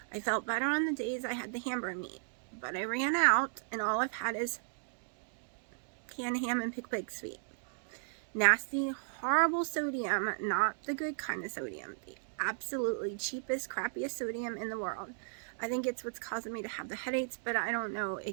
I felt better on the days I had the hamburger meat, but I ran out, and all I've had is canned ham and pickle pig sweet. Nasty, horrible sodium, not the good kind of sodium, the absolutely cheapest, crappiest sodium in the world. I think it's what's causing me to have the headaches, but I don't know.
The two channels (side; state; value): left; silent; digital silence